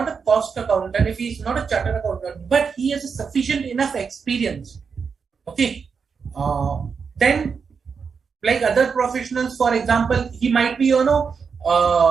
a cost accountant, if he is not a chartered accountant, but he has a sufficient enough experience. Okay. Then like other professionals, for example, he might be,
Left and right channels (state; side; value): quieter; left; 5.8 dB